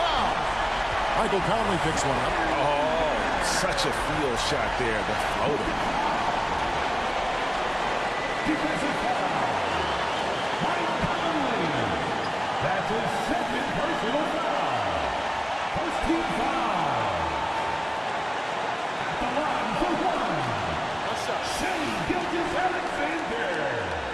Michael Conley picks one up. Oh, such a field shot there, the floater. Defensive foul. Mike Conley. That's his 2nd personal foul. First team foul. At the line for 1. What's up? Shai Gilgeous-Alexander.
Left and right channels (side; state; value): both; identical; correlation 1.00